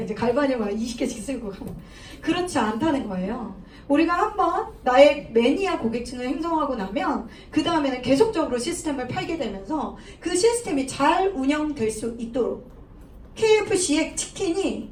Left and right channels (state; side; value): identical; both; correlation 1.00